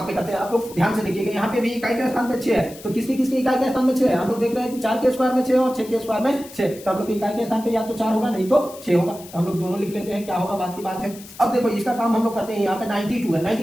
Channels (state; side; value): noise; left; hiss, 18 dB below the sound